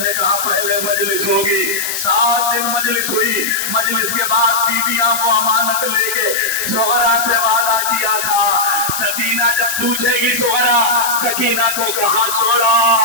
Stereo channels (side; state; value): left; noise; hiss, 4 dB below the sound